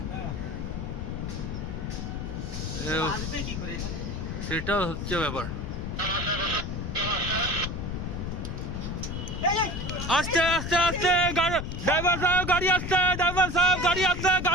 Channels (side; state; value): left; noise; rumble, 4 dB below the sound